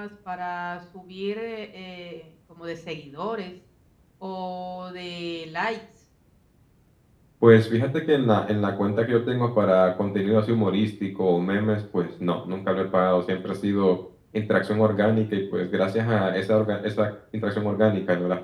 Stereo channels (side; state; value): both; identical; correlation 1.00